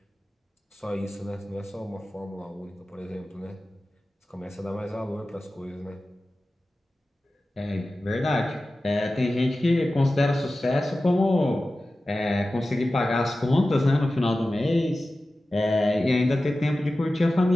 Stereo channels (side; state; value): both; normal; correlation 0.95